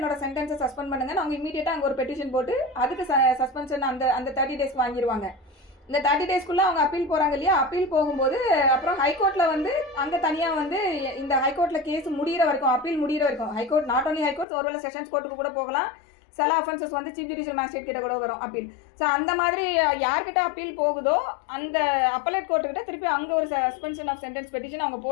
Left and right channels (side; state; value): right; drops out; at 14.5 s